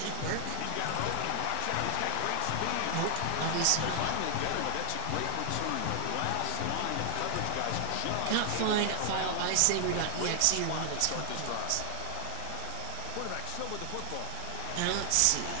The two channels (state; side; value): different; both; correlation 0.00